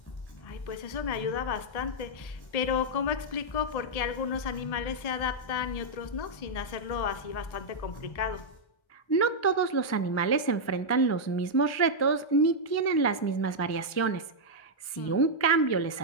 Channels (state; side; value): late; right; 1.3 ms